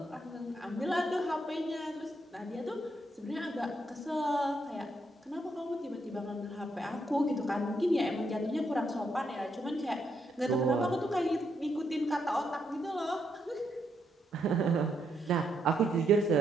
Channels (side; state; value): both; normal; correlation 0.77